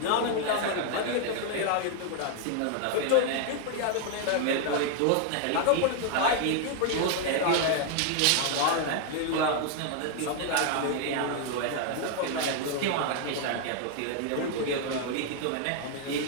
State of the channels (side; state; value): both; different; correlation 0.00